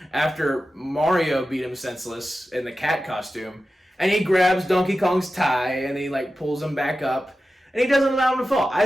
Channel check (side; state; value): both; normal; correlation 0.93